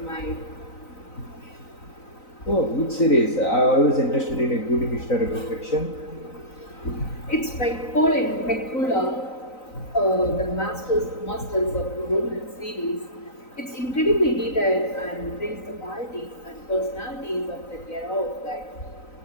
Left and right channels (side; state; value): right; late; 3.9 ms